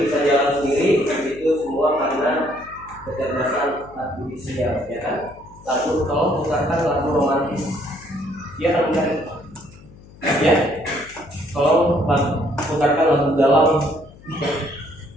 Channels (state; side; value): noise; left; hum, 22 dB below the sound